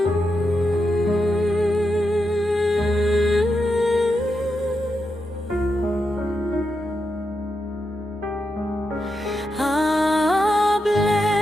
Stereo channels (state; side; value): normal; both; correlation 0.86